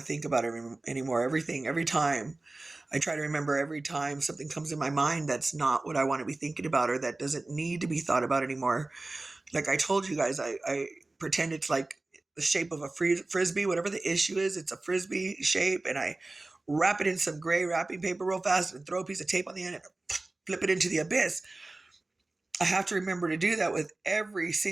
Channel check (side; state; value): left; quieter; 3.0 dB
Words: think about anymore. Everything, every time. I try to remember every time something comes in my mind that's not what I want to be thinking about or that doesn't need to be thought about anymore. Like I told you guys, I pretend it's like the shape of a frisbee, whatever the issue is, it's a frisbee shape, and I wrap it in some gray wrapping paper real fast and throw a piece of tape on the end and flip it into the abyss. I have to remember to do that with every